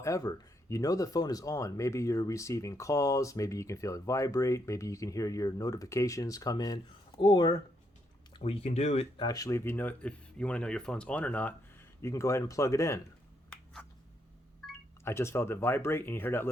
you know the phone is on. Maybe you're receiving calls, maybe you can feel it vibrate, maybe you can hear your notifications come in, or what you can do actually, if you want to know your phone's on or not, you can go ahead and plug it in. I just felt it vibrate and you hear that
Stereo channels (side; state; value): both; normal; correlation 0.76